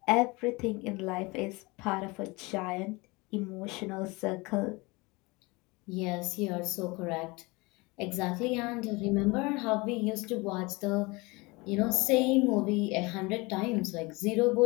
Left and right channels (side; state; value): right; quieter; 25.1 dB